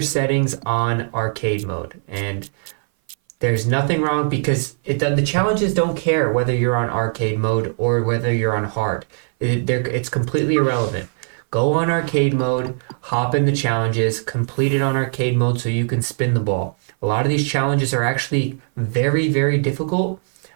settings on arcade mode. And there's nothing wrong because the challenges don't care whether you're on arcade mode or whether you're on hard. It's completely irrelevant. Go on arcade mode, hop in the challenges, complete it on arcade mode so you can spin the ball. A lot of these challenges are actually very, very difficult,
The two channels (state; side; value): silent; left; 59 dB below the other